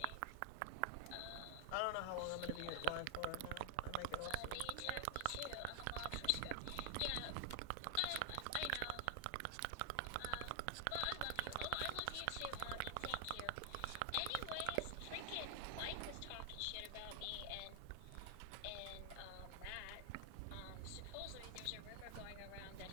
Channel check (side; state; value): both; different; correlation 0.00